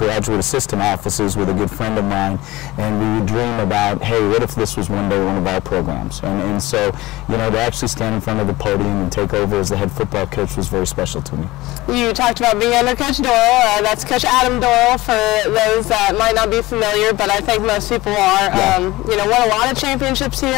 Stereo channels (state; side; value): quieter; right; 19.2 dB